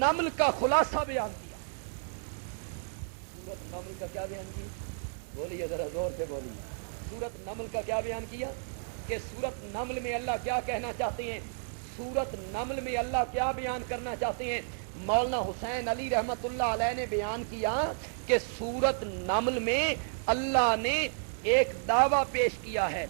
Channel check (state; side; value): silent; left; digital silence